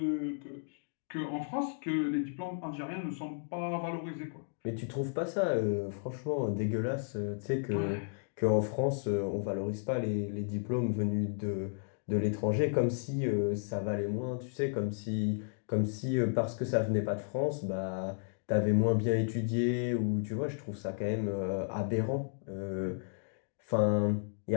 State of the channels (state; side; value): silent; right; digital silence